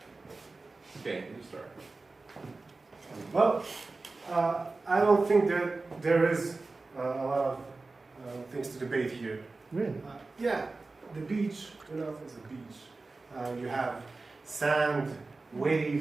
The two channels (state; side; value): quieter; left; 3.6 dB